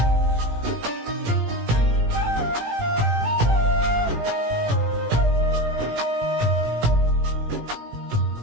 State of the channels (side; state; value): left; late; 18 ms